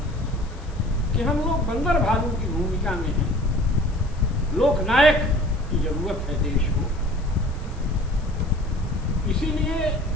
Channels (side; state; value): left; noise; hiss, 27 dB below the sound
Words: कि हम लोग बंदर भालू की भूमिका में हैं, लोकनायक की जरूरत है देश को। इसीलिए